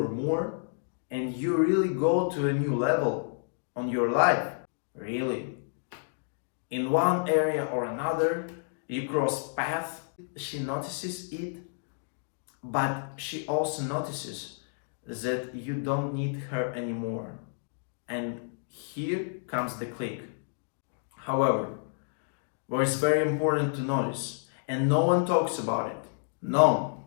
more, and you really go to a new level on your life, really, in one area or another, you cross paths, she notices it, but she also notices that you don't need her anymore. And here comes the click. However, where it's very important to notice, and no one talks about it. No.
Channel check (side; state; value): right; silent; digital silence